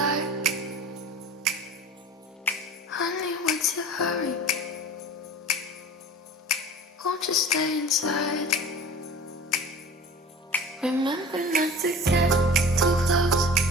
Honey, what's your hurry? Won't you stay inside? Remember not to get too close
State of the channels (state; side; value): normal; both; correlation 0.40